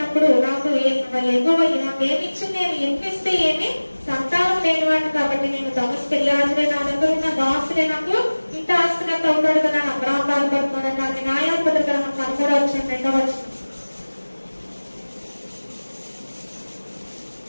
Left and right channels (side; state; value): both; inverted; correlation -1.00